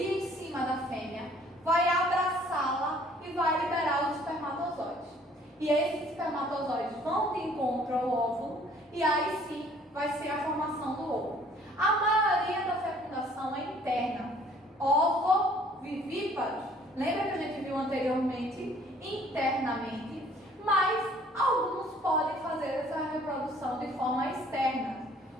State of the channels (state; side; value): normal; both; correlation 0.57